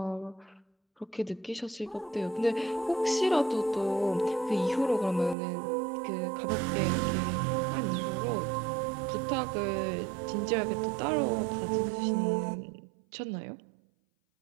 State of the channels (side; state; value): left; drops out; at 5.4 s